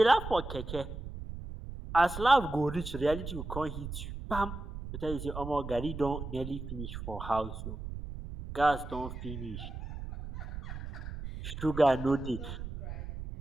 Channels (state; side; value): noise; right; rumble, 8 dB below the sound